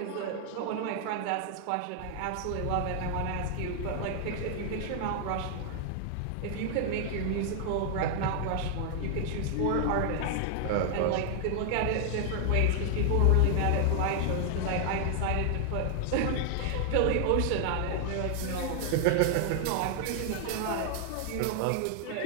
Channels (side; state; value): both; different; correlation 0.00